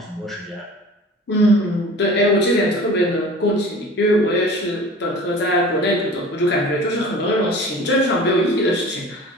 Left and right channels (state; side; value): normal; both; correlation 0.41